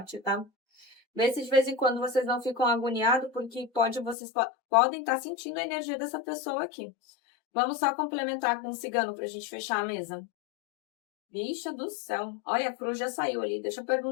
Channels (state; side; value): drops out; right; at 4.2 s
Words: tá? Vê se de vez em quando vocês não ficam agoniados, porque vocês podem estar sentindo a energia dessa pessoa aqui. Vamos só complementar com o cigano para a gente fechar a mesa. Bicha do céu. Olha, a cruz já saiu ali. Deixa eu